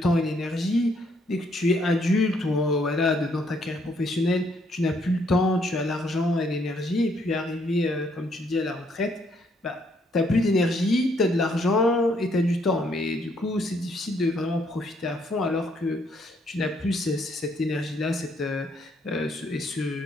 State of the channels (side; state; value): both; normal; correlation 0.70